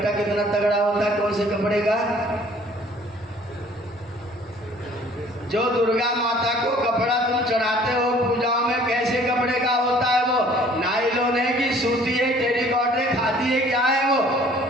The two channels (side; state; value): both; normal; correlation 0.54